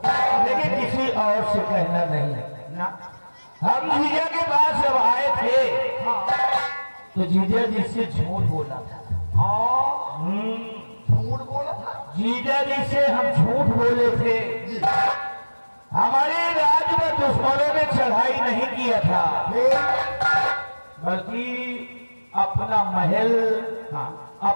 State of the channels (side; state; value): both; inverted; correlation -1.00